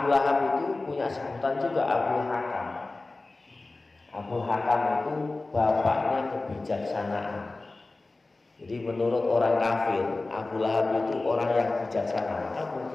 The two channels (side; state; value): right; quieter; 3.3 dB